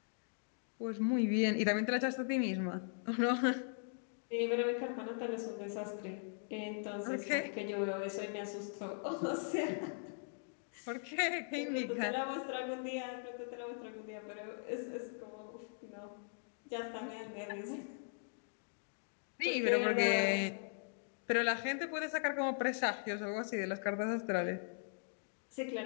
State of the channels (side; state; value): right; silent; digital silence